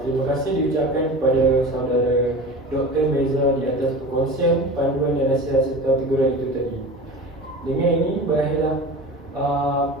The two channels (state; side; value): normal; both; correlation 0.34